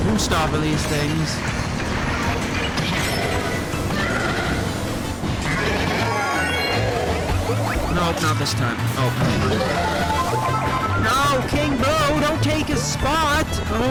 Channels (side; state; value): both; identical; correlation 1.00